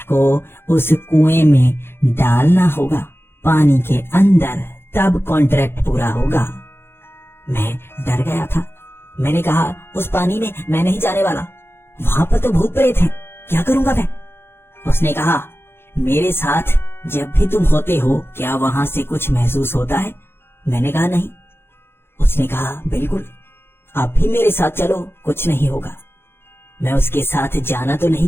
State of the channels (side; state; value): right; late; 0.11 ms